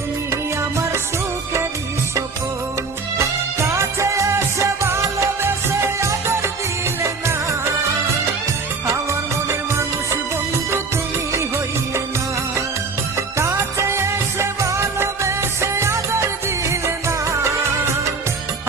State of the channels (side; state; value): left; quieter; 4.4 dB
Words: আমার সুখেরই স্বপন। কাছে এসে ভালোবেসে আদর দিলে না, আমার মনের মানুষ বন্ধু তুমি হইলে না। কাছে এসে ভালোবেসে আদর দিলে না,